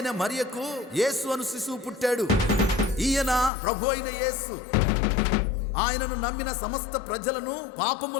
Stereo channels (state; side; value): drops out; right; at 3.5 s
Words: మరియకు యేసు అను శిశువు పుట్టాడు. ఈయన ప్రభు అయిన యేసు. ఆయనను నమ్మిన సమస్త ప్రజలను